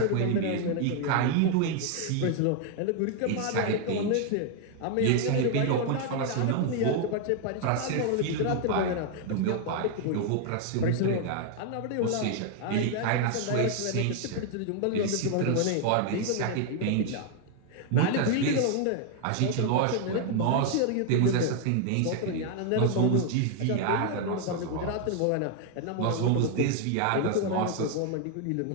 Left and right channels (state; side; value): different; both; correlation 0.00